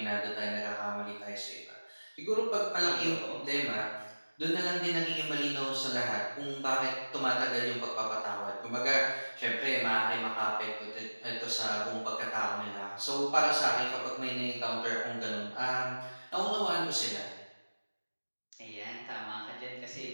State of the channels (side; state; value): both; inverted; correlation -1.00